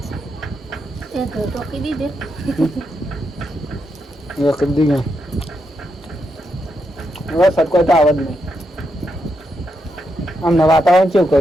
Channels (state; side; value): normal; both; correlation 0.82